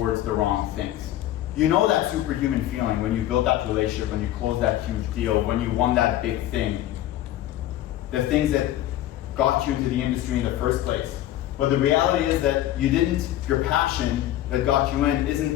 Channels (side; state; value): right; quieter; 13.5 dB